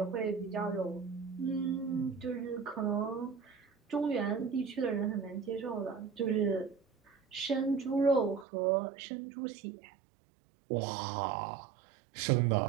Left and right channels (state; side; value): drops out; left; at 8.5 s